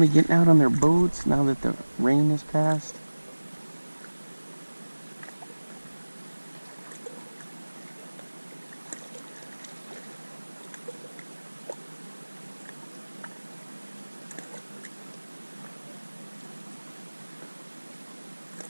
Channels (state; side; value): inverted; both; correlation -1.00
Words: getting out on their boats now that the rain has passed.